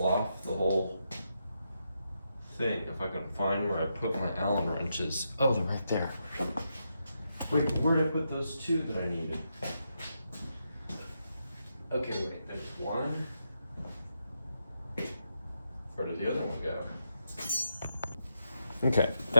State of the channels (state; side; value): inverted; both; correlation -0.83